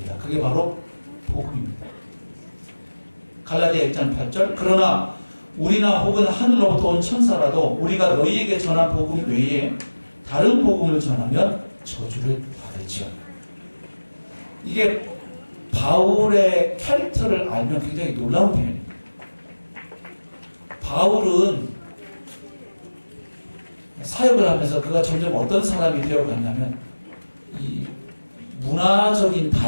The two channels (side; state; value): both; inverted; correlation -1.00